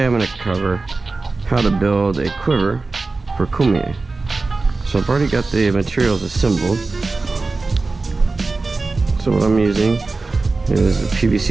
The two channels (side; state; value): left; quieter; 3.7 dB